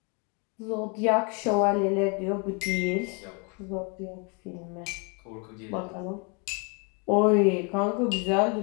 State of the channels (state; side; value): quieter; right; 33.8 dB